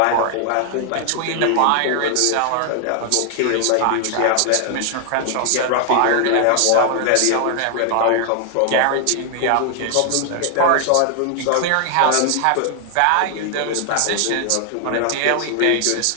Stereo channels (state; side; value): different; both; correlation 0.00